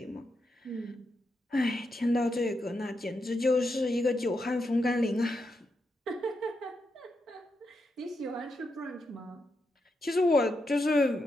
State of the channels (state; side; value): normal; both; correlation 0.84